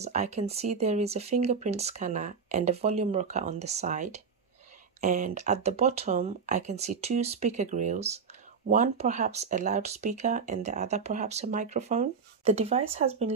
I can see there is a fingerprint scanner and a volume rocker on the side. And at the bottom, I can see 2 speaker grills, one perhaps a loudspeaker and the other perhaps a microphone. The device has been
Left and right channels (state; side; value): quieter; left; 5.7 dB